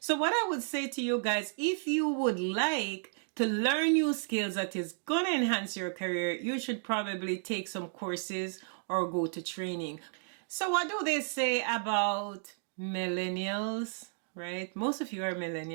So what I would say to you guys, if you would like to learn new skills that is going to enhance your career, you should probably take some courses or go to training. So what do they say about millennials, right? Most of you are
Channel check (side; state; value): left; silent; digital silence